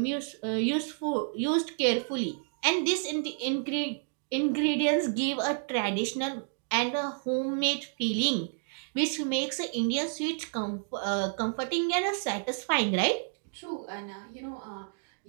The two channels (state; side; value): silent; left; digital silence